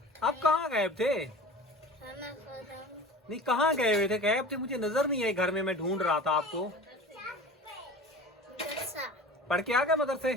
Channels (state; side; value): normal; both; correlation 0.37